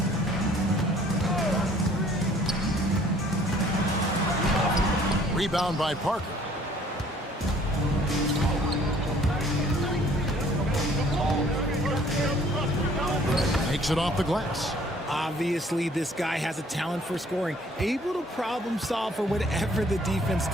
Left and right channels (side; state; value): both; normal; correlation 0.57